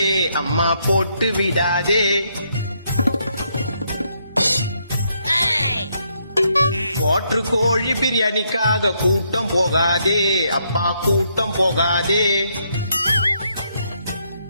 அம்மா போட்டு விடாதே. வாட்டர் கோழி பிரியாணிக்காக கூட்டம் போகாதே அப்பா கூட்டம் போகாதே.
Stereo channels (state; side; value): inverted; both; correlation -0.75